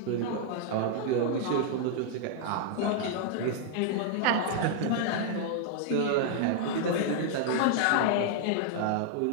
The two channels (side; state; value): both; different; correlation 0.00